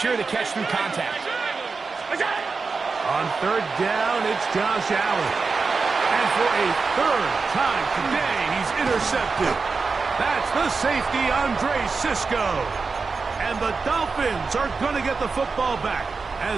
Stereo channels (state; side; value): quieter; left; 4.6 dB